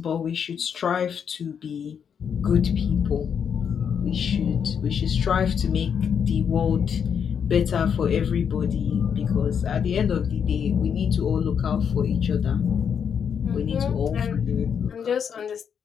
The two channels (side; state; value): right; quieter; 7.4 dB